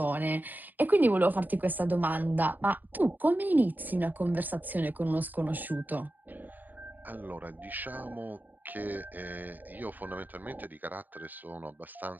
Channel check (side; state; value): left; late; 0.086 ms